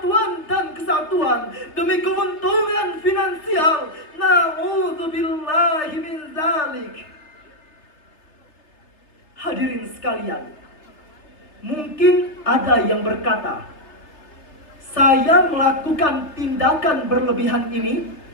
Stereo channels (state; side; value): late; right; 3.3 ms